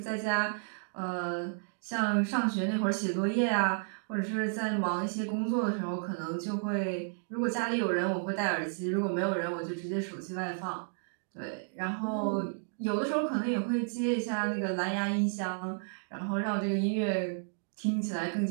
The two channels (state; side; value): silent; left; digital silence